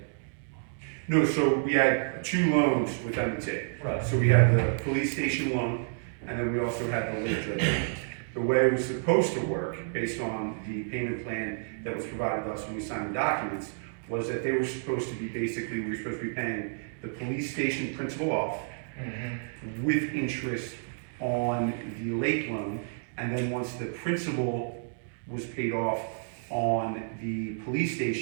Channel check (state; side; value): silent; left; digital silence